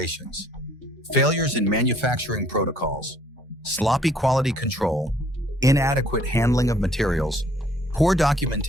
failures in manufacturing protocols, sloppy quality control, inadequate handling of materials, poor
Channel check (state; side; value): normal; both; correlation 0.61